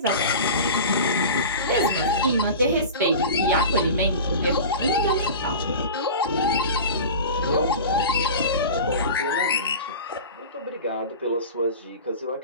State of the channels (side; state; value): both; inverted; correlation -0.33